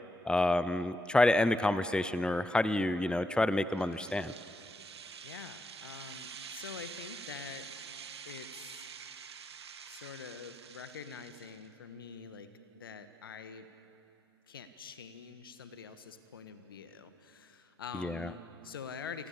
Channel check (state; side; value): normal; both; correlation 0.84